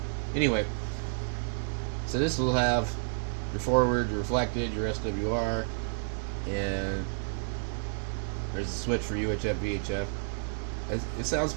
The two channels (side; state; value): left; silent; digital silence